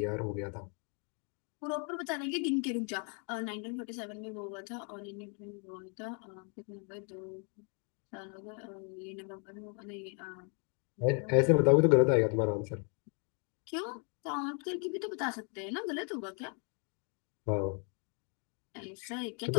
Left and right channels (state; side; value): quieter; right; 38.8 dB